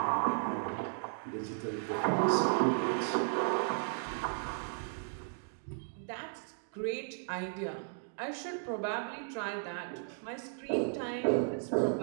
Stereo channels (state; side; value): silent; left; digital silence